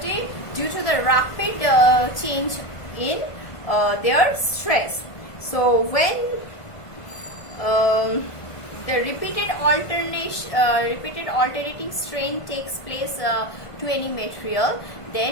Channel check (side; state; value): right; late; 1.5 ms